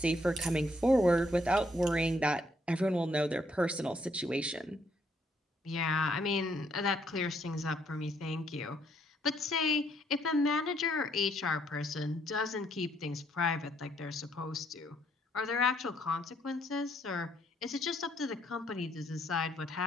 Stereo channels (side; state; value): both; normal; correlation 0.70